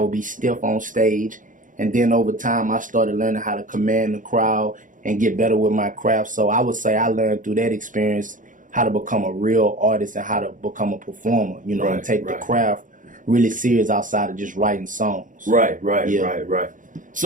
be stiff on stage. And then over time, I started learning how to command the crowd and get better with my craft. So I would say I learned through that experience how to become a real artist and how to become a performer, you know, and take the craft really serious outside of just writing songs. Right.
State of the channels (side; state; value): left; late; 0.38 ms